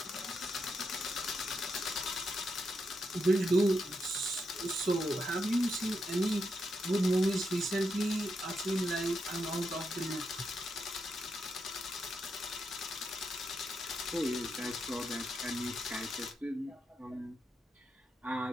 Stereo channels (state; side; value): normal; both; correlation 0.83